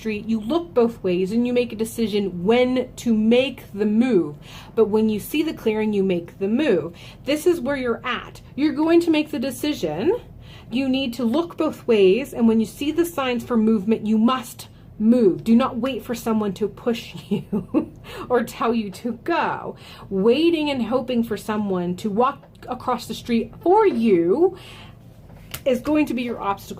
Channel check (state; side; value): identical; both; correlation 1.00